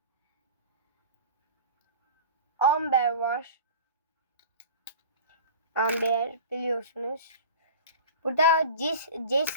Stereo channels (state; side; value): inverted; both; correlation -0.37